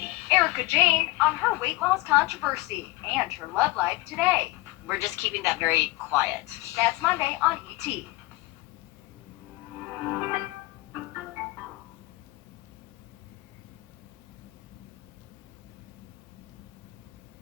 Erica Jane on her weight loss controversy and her love life today. We're just keeping that very quiet. That's Monday on ET.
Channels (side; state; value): right; quieter; 20.6 dB